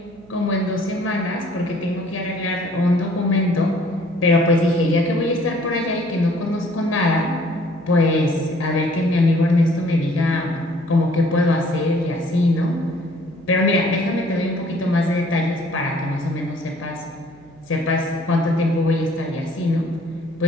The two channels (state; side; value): noise; right; hum, 25 dB below the sound